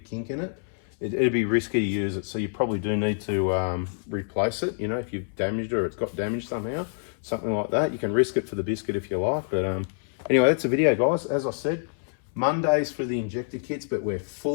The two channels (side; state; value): right; silent; 61 dB below the other